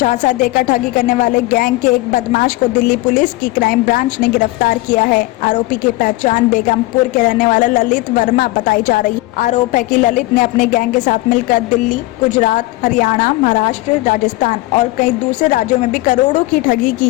देकर ठगी करने वाले गैंग के एक बदमाश को दिल्ली पुलिस की क्राइम ब्रांच ने गिरफ्तार किया है। आरोपी की पहचान बेगमपुर के रहने वाला ललित वर्मा बताई जा रही है। आरोप है कि ललित ने अपने गैंग के साथ मिलकर दिल्ली, गुजरात, हरियाणा, महाराष्ट्र, राजस्थान और कई दूसरे राज्यों में भी करोड़ों की ठगी की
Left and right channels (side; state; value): right; quieter; 19.8 dB